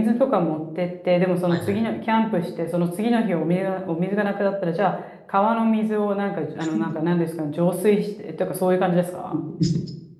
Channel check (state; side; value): identical; both; correlation 1.00